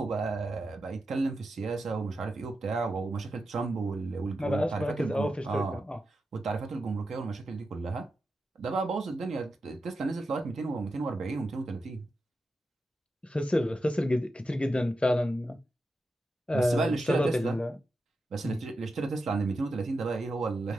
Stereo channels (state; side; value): normal; both; correlation 0.89